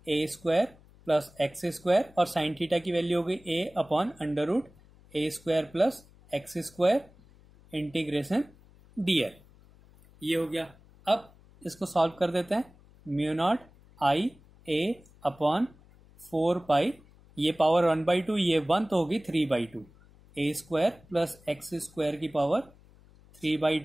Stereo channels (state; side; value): noise; left; hum, 26 dB below the sound